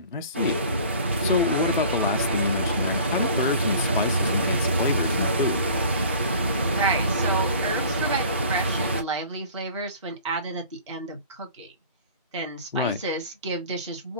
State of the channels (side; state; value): both; inverted; correlation -0.45